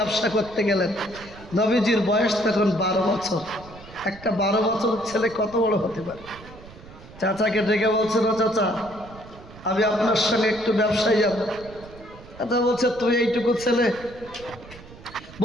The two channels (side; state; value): right; noise; rumble, 19 dB below the sound